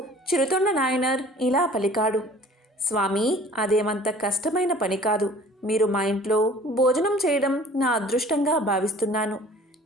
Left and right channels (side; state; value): both; normal; correlation 0.49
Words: చిరుతొండ నాయనర్ ఇలా పలికాడు. స్వామి, అదేమంత కష్టమైన పని కాదు. మీరు మా ఇంట్లో భోజనం చేయడం నా అదృష్టంగా భావిస్తున్నాను.